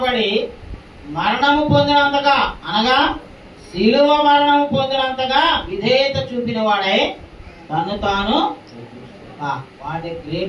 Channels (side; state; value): both; identical; correlation 1.00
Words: మరణము పొందినంతగా, అనగా శిలువ మరణము పొందినంతగా విధేయత చూపిన వాడై తను తాను వాడే